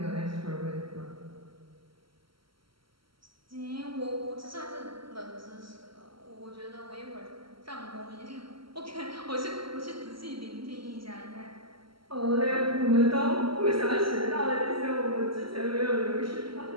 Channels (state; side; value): late; left; 0.74 ms